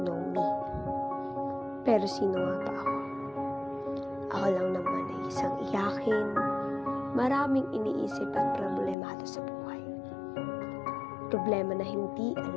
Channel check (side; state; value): right; drops out; at 9.0 s